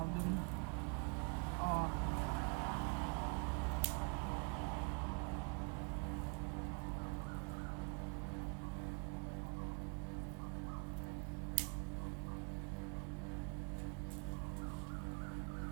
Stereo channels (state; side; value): quieter; left; 35.9 dB